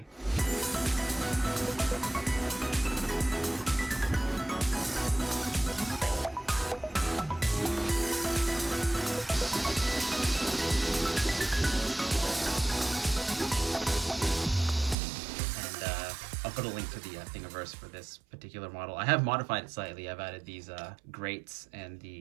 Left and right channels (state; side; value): drops out; left; at 15.0 s